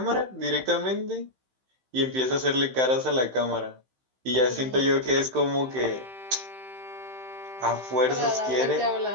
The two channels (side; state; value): left; late; 15 ms